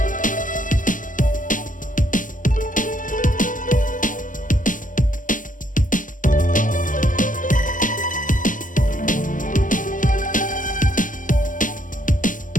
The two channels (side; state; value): right; late; 0.38 ms